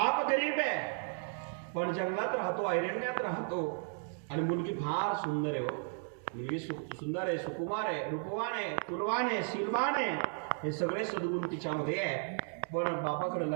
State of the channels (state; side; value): silent; left; 55 dB below the other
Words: गरीब आहे, पण जंगलात राहतो, अरण्यात राहतो, आणि मुलगी फार सुंदर आहे. मुलगी सुंदर आहे, सुकुमार आहे, रूपवान आहे, तुलवान आहे, शीलवान आहे, हे सगळे सद्गुण तिच्यामध्ये आहे. पण बापाकडे